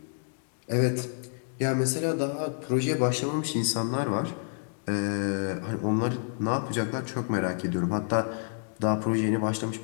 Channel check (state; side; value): silent; right; 59 dB below the other